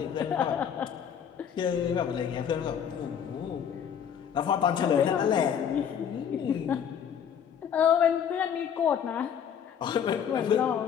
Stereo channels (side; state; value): right; quieter; 8.2 dB